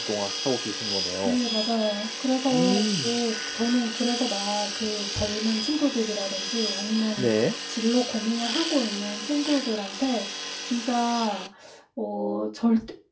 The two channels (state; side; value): identical; both; correlation 1.00